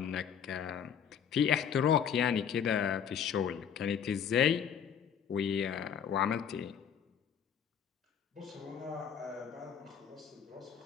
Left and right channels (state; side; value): quieter; right; 8.1 dB